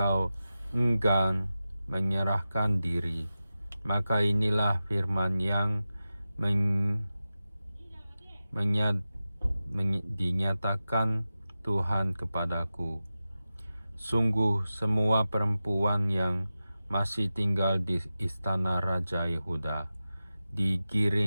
enggan menyerahkan diri, maka inilah firman yang dinyatakan Tuhan kepadaku. Sungguh semua perempuan yang masih tinggal di istana Raja Yehuda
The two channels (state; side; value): inverted; both; correlation -0.93